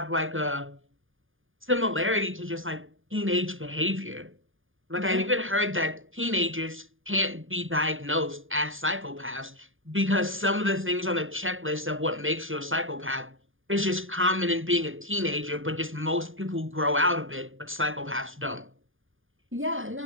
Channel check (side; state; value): left; late; 0.59 ms